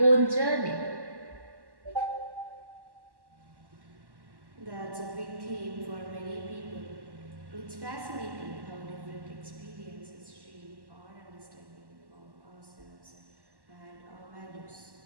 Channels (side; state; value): left; late; 1.1 ms